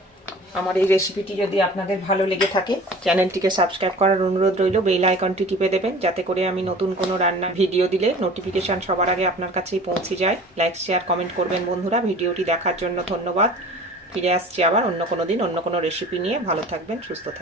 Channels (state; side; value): normal; both; correlation 0.44